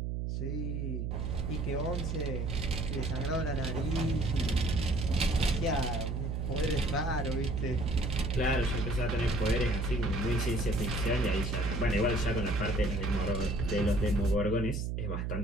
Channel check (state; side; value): noise; right; hum, 1 dB below the sound